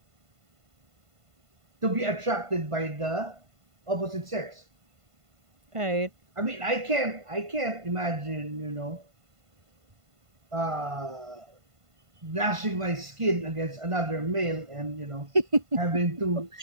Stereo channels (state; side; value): late; left; 1.5 ms